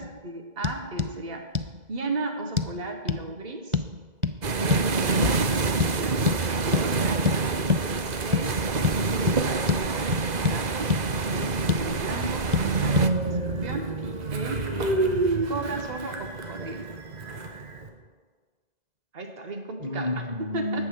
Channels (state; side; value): late; left; 2.0 ms